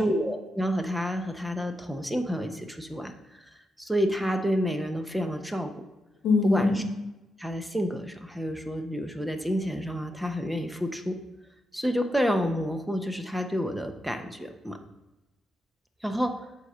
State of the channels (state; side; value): normal; both; correlation 0.86